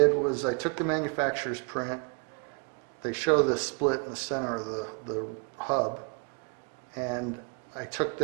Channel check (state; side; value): quieter; left; 35.8 dB